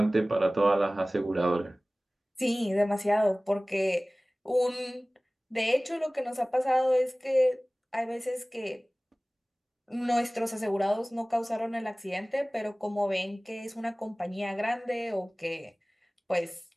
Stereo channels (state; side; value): normal; both; correlation 0.98